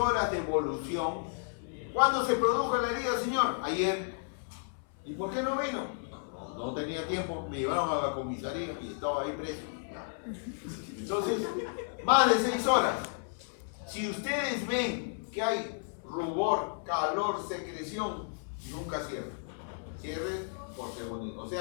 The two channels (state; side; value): silent; right; 56 dB below the other